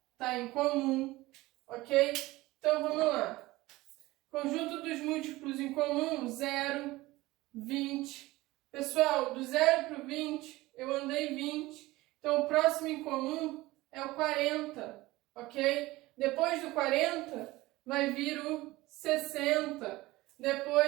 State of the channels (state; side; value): quieter; left; 19.2 dB